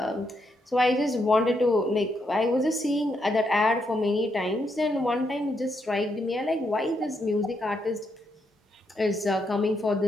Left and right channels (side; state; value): both; normal; correlation 0.79